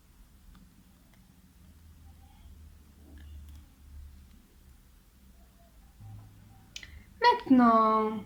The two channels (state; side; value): identical; both; correlation 1.00